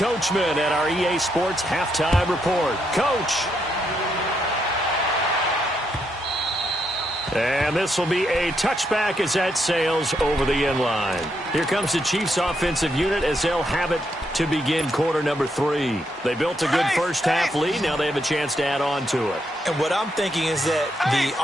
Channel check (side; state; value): both; normal; correlation 0.79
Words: at our EA Sports Halftime Report. Coach. And this will be a touchback as that sails over the end line. Here comes the Chiefs offensive unit as they'll have it to begin quarter number 3. They built a good first half lead. Now they have a chance to add on to it. And what I'm thinking is that the